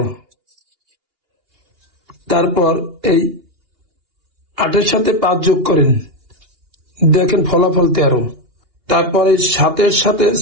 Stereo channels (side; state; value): left; late; 2.8 ms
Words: তারপর এই 8-এর সাথে 5 যোগ করেন, দেখেন ফলাফল 13। তারপর এই 7-এর সাথে